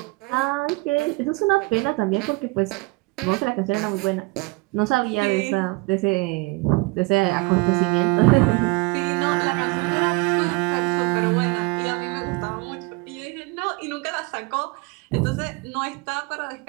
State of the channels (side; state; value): left; quieter; 26.2 dB